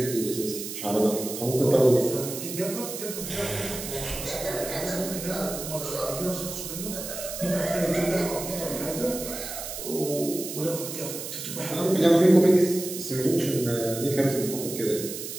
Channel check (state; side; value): noise; right; hiss, 8 dB below the sound